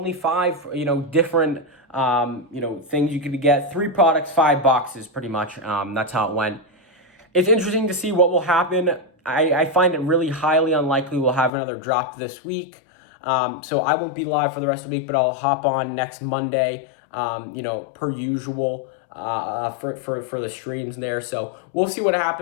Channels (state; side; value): drops out; right; at 11.5 s